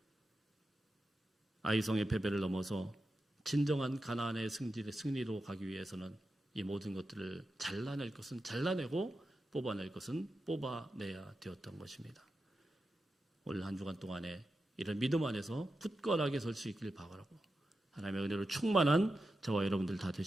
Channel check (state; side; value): normal; both; correlation 0.90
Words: 아이성의 패배를 넘어서 진정한 가나안의 승리로 가기 위해서는 이 모든 것들을 잘라낼 것은 잘라내고 뽑아낼 것은 뽑아내야 되었던 것입니다. 올 한 주간 동안에 이런 믿음 안에서 굳건하게 설 수 있기를 바라고 하나님의 은혜로 충만한 저와 여러분들 다